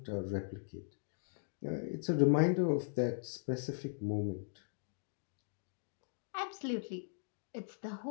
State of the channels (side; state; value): right; silent; digital silence